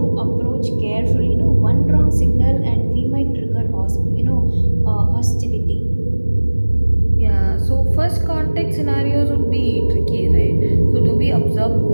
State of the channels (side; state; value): both; inverted; correlation -1.00